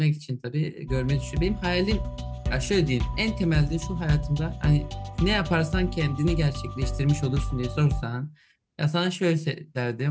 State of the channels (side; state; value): both; identical; correlation 1.00